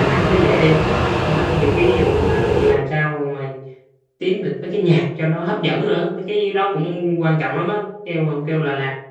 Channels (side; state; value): both; identical; correlation 1.00